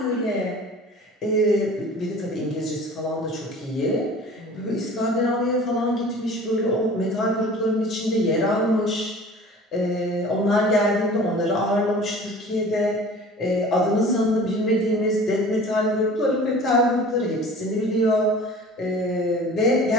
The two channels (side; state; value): both; normal; correlation 0.43